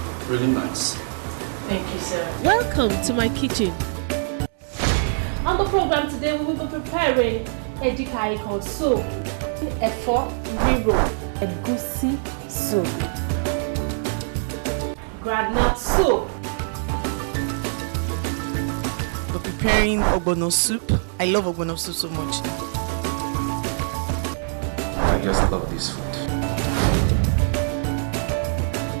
Really nice. Thank you, sir. Welcome to my kitchen. On the program today, we will be preparing edikaikon soup, efo riro, egusi soup, groundnut soup. We're preparing ogbono soup. I love ogbono soup so much. I just love this food.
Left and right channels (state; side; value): silent; left; digital silence